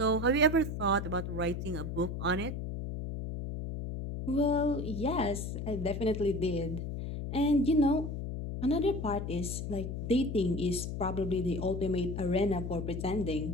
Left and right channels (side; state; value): left; noise; hum, 5 dB below the sound